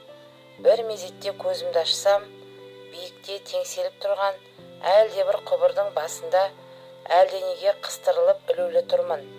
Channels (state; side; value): identical; both; correlation 1.00